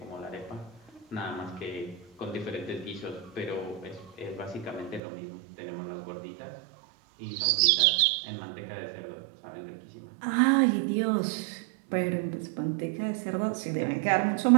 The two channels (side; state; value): left; drops out; at 5.0 s